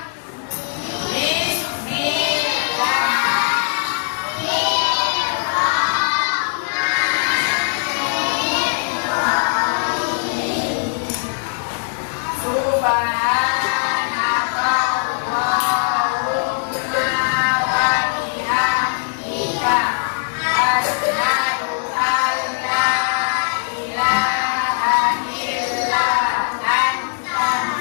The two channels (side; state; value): right; silent; digital silence